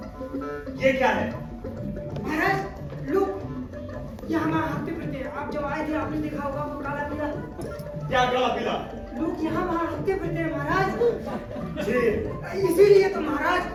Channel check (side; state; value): both; identical; correlation 1.00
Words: ये क्या है? महाराज लोग ये हमारा हफ्ते फिरते हैं। आप जब आए थे आपने देखा होगा वो काला पीला। क्या काला पीला? लोग यहाँ वहाँ हफ्ते फिरते हैं महाराज। जी इसीलिए तो महाराज